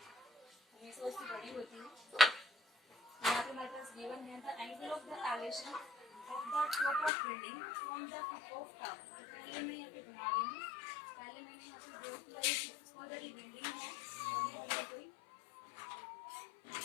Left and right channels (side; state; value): right; drops out; at 7.1 s